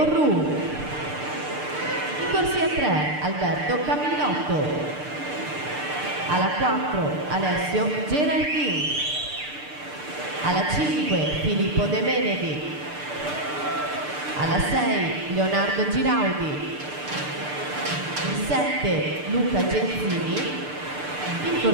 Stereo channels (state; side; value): late; left; 6.7 ms